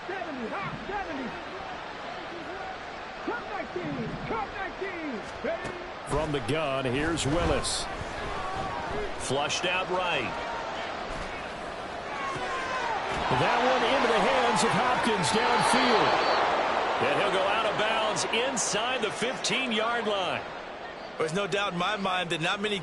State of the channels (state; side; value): identical; both; correlation 1.00